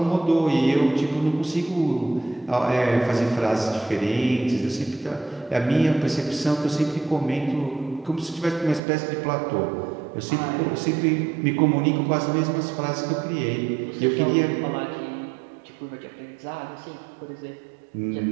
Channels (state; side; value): drops out; left; at 8.8 s